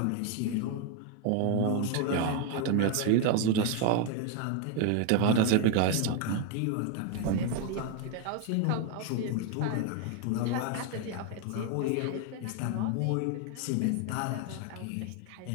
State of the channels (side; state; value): both; different; correlation 0.01